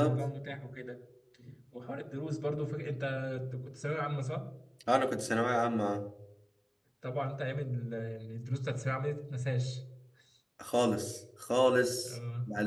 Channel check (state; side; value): identical; both; correlation 1.00